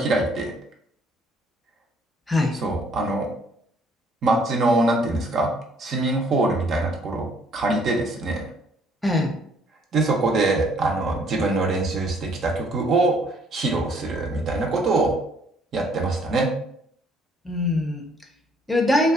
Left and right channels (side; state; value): both; normal; correlation 0.63